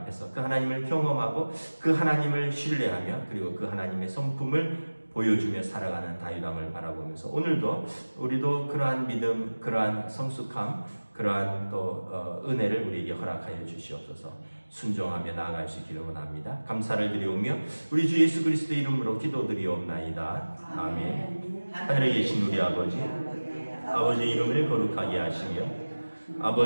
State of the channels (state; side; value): inverted; both; correlation -1.00